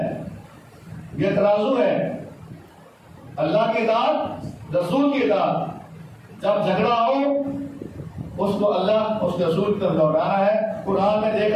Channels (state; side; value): identical; both; correlation 1.00